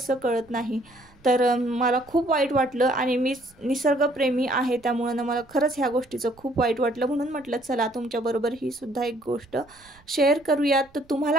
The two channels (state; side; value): noise; right; rumble, 29 dB below the sound